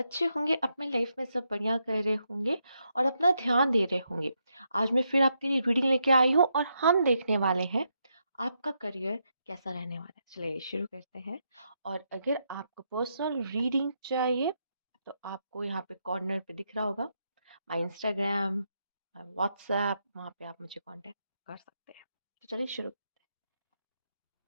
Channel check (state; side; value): inverted; both; correlation -0.81